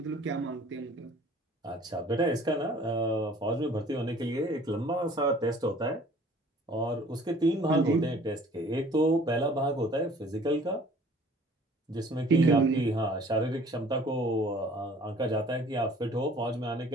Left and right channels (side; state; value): both; normal; correlation 0.52